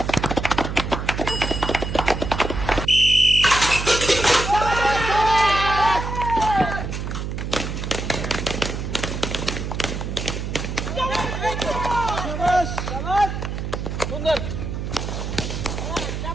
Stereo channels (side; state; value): right; noise; hum, 4 dB below the sound